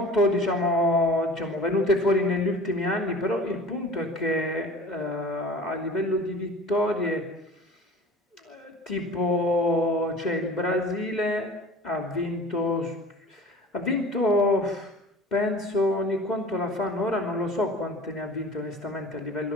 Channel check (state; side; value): normal; both; correlation 0.41